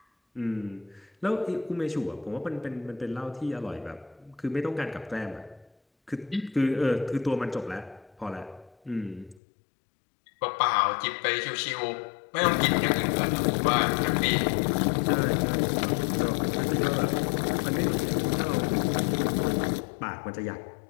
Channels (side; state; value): right; drops out; at 9.4 s